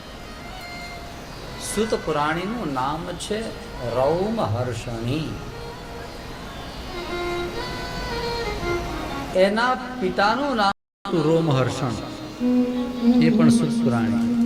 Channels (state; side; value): identical; both; correlation 1.00